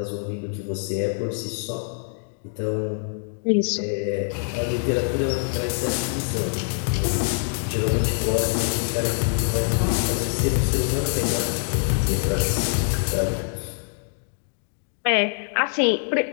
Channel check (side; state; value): right; silent; digital silence